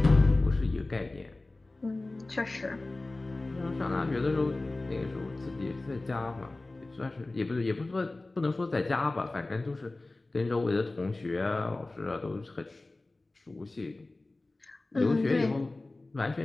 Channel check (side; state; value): right; quieter; 3.0 dB